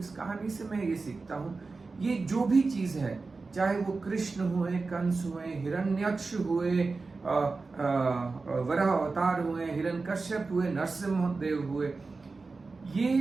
कहानी से मैं ये सीखता हूँ, ये जो भी चीज है, चाहे वो कृष्ण हुए, कंस हुए, हिरण्यक्ष हुए, वराह अवतार हुए, हिरण्यकश्यप हुए, नरसिंह देव हुए,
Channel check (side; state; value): left; quieter; 4.0 dB